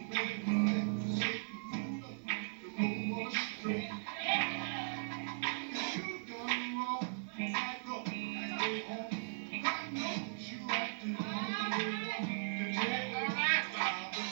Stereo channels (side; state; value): left; silent; 52 dB below the other